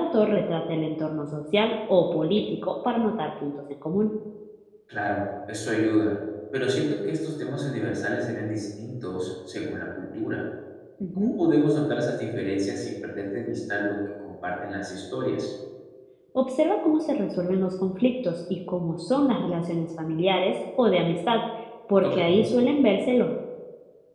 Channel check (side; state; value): both; identical; correlation 1.00